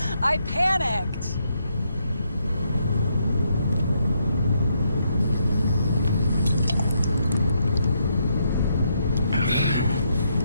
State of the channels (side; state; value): both; inverted; correlation -0.77